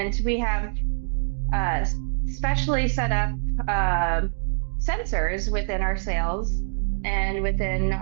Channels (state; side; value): silent; left; 57 dB below the other